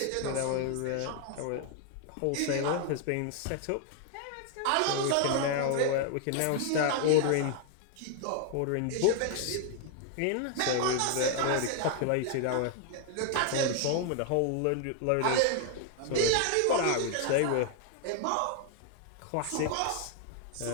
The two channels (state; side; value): different; both; correlation 0.00